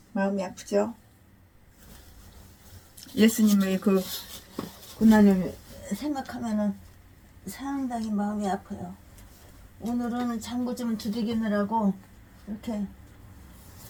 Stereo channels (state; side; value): identical; both; correlation 1.00